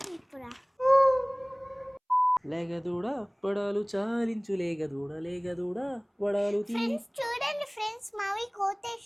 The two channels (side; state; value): both; identical; correlation 1.00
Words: ఇప్పుడు? లేగదూడ పడాలు చాలించు, లేగదూడ పడాలు. ఫ్రెండ్స్ చూడండి ఫ్రెండ్స్, మావి